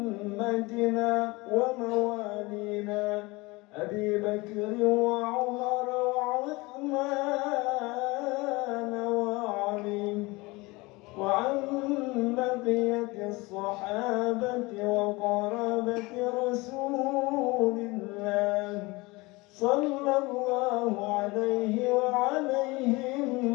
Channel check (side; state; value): right; quieter; 23.5 dB